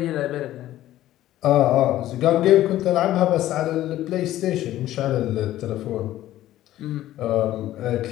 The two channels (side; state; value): right; quieter; 14.0 dB